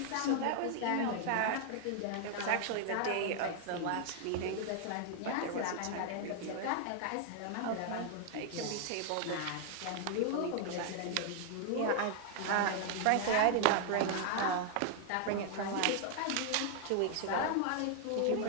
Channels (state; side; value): different; both; correlation 0.00